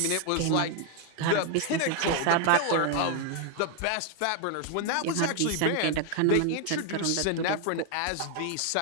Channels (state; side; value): different; both; correlation 0.00